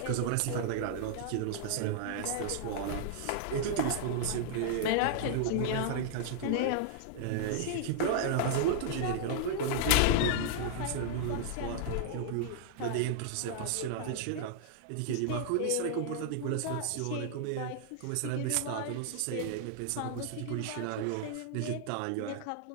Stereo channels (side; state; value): both; different; correlation -0.01